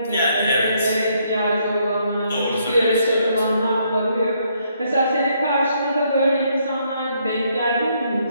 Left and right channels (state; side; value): inverted; both; correlation -0.72